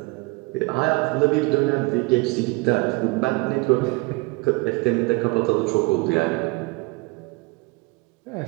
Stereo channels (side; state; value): left; quieter; 26.1 dB